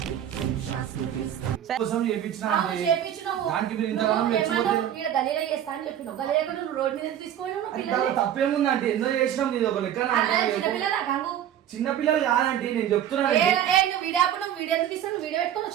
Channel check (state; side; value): quieter; left; 10.5 dB